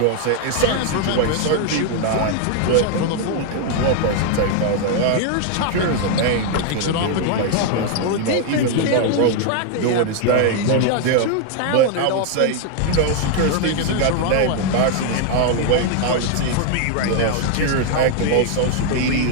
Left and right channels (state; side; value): different; both; correlation 0.00